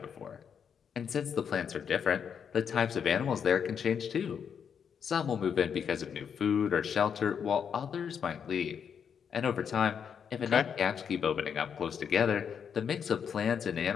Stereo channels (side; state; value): right; quieter; 7.4 dB